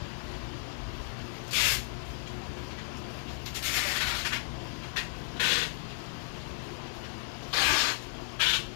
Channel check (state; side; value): silent; right; digital silence